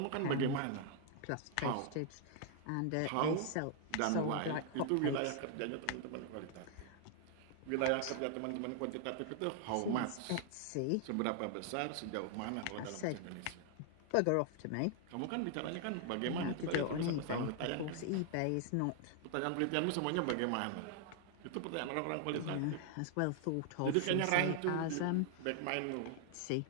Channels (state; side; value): different; both; correlation 0.00